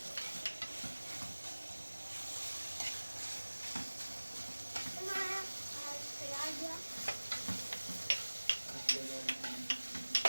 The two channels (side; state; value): both; inverted; correlation -1.00